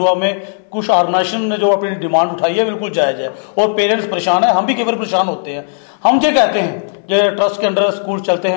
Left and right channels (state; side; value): silent; right; 70 dB below the other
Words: में कुछ ऑर्गेनाइजेशन ने जो अपनी डिमांड उठाई है बिल्कुल जायज है, और पेरेंट्स परेशान है, हम भी कई बार परेशान होते हैं। हम ये कहते हैं ये ट्रस्ट के अंडर स्कूल चलते